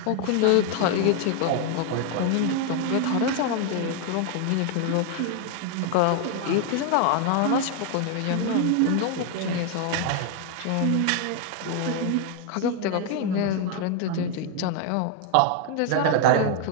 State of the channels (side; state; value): both; different; correlation 0.00